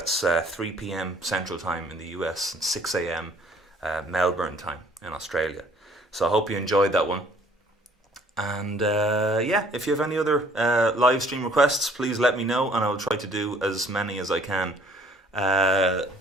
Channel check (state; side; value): normal; both; correlation 0.58